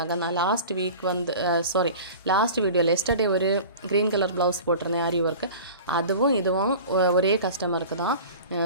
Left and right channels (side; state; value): both; inverted; correlation -0.38